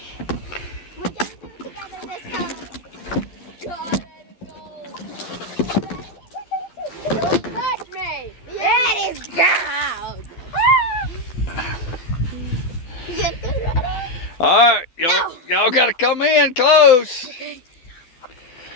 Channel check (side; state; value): right; late; 12 ms